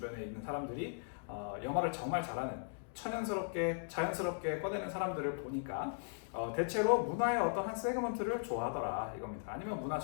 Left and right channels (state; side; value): silent; right; digital silence